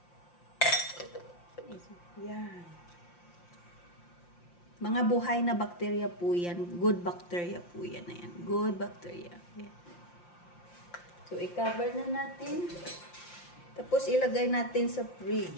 Yan. Mga buhay na bakterya po yan. Good bacteria po yan. Ayan. Good bacteria. Ayan. So, i-cover na natin. Tapos, ilagay natin sa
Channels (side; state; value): right; late; 5.7 ms